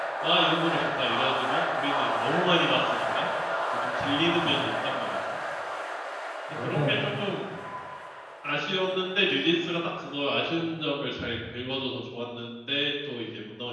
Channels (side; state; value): both; identical; correlation 1.00